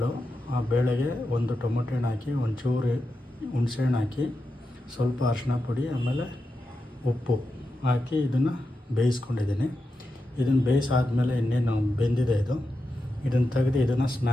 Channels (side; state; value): both; normal; correlation 0.89